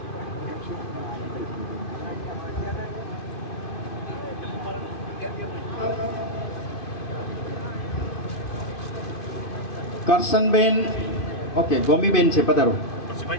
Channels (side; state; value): right; late; 2.5 ms